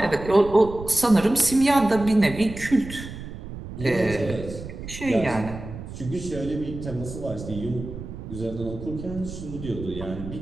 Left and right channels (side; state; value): right; noise; rumble, 11 dB below the sound